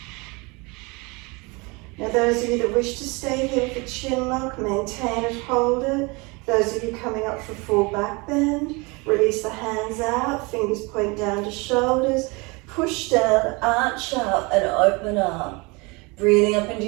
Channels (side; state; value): left; quieter; 27.2 dB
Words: Now those of you that wish to stay here with the chin lock, maintain it, hold it. Those of you coming up for full back bend, release the hands out, fingers point down to shoulders, push down, arch up and open up. Breathing up into